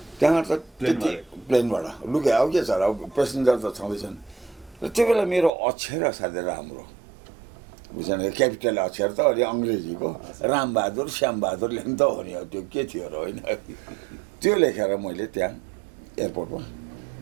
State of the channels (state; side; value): drops out; left; at 5.5 s